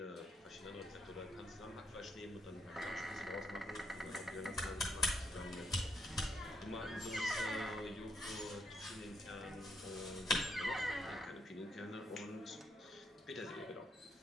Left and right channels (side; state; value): both; normal; correlation 0.77